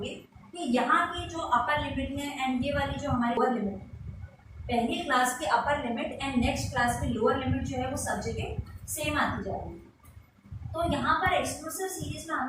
कि यहाँ की जो अपर लिमिट है एंड ये वाली जो हमारी लोअर लिमिट है, पहली क्लास की upper limit and next class की लोअर लिमिट जो है वो सब जगह सेम आती जा रही है। तो यहाँ पर एक्सक्लूसिव सीरीज में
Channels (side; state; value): both; identical; correlation 1.00